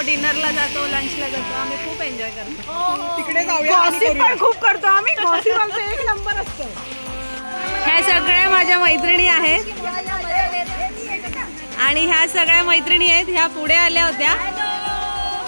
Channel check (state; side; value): inverted; both; correlation -1.00